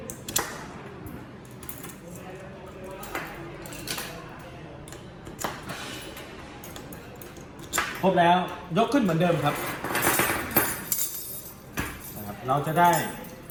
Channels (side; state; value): both; identical; correlation 1.00